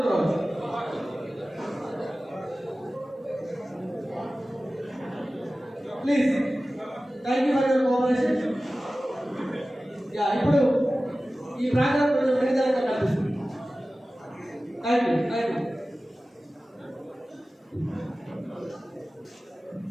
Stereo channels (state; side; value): normal; both; correlation 0.96